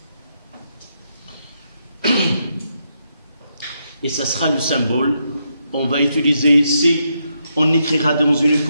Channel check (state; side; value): inverted; both; correlation -0.80